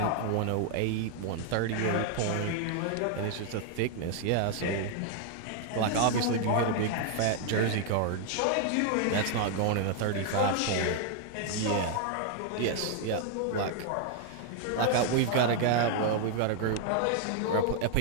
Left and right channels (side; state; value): both; different; correlation 0.00